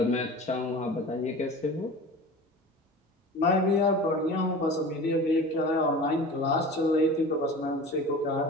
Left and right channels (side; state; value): both; normal; correlation 0.36